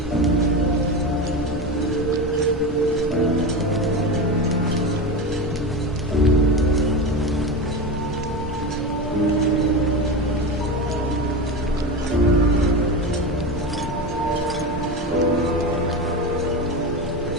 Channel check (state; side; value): normal; both; correlation 0.21